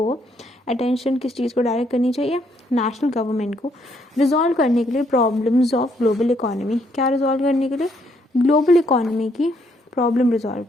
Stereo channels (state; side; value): normal; both; correlation 0.71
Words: अटेंशन किस चीज़ को डायरेक्ट करनी चाहिए? नेशनल गवर्नमेंट को, रिजॉल्व करने के लिए प्रॉब्लम्स ऑफ ग्लोबल इकोनॉमी। क्या रिजॉल्व करने के लिए? ग्लोबल इकोनॉमी की प्रॉब्लम रिजॉल्व